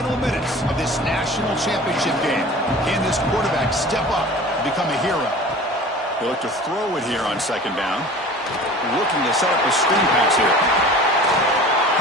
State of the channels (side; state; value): both; normal; correlation 0.41